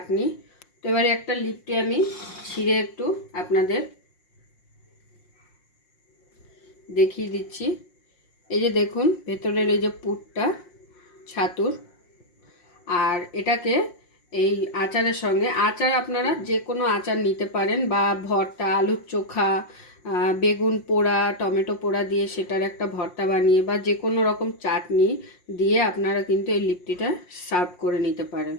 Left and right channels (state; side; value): late; right; 5.6 ms